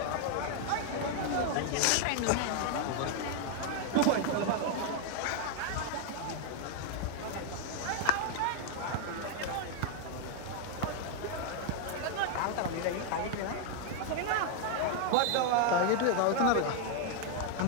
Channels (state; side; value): different; both; correlation 0.00